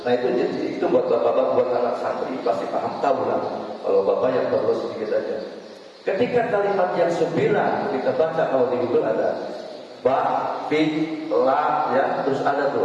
Nah itu buat bapak-bapak, buat anak santri pasti paham, tahu lah. Kalau bapak yang baru sedikit aja. Ketika kalimat yang 9 kita baca, kalau di Google ada ba, fi, la, ya, terus ada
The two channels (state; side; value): identical; both; correlation 1.00